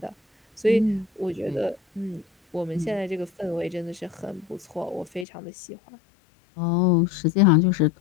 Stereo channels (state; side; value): drops out; right; at 5.2 s